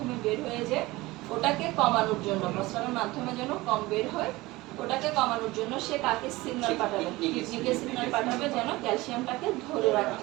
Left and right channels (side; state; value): left; quieter; 20.2 dB